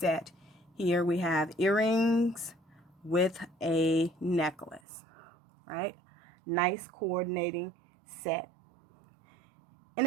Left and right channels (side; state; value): left; drops out; at 4.8 s